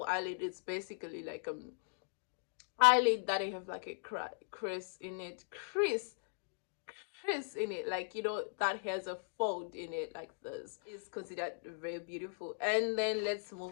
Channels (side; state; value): right; silent; digital silence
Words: eyelid, it's basically like eyelid that I have like a crease in it, like that has a fold in it like this, is considered very beautiful. And then let's